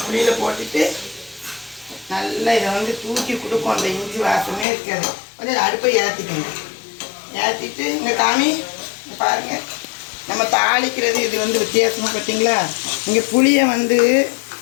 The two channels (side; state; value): right; drops out; at 4.7 s